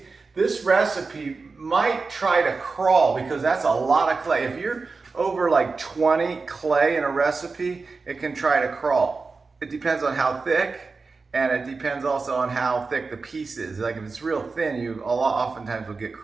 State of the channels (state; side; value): quieter; left; 4.2 dB